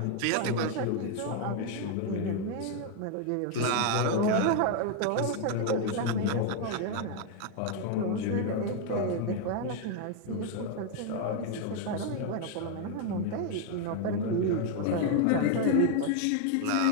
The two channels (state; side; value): different; both; correlation 0.01